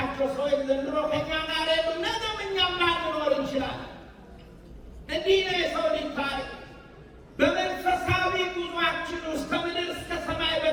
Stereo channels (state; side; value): identical; both; correlation 1.00